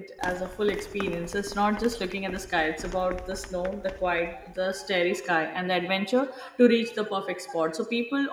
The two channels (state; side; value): identical; both; correlation 1.00